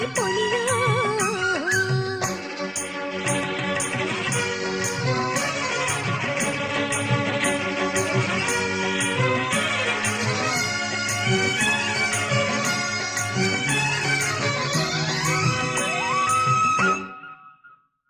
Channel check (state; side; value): identical; both; correlation 1.00